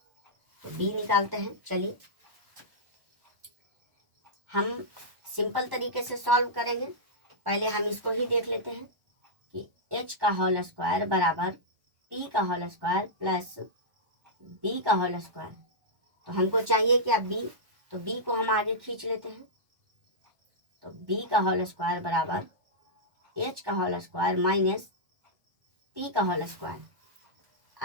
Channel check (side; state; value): left; late; 1.2 ms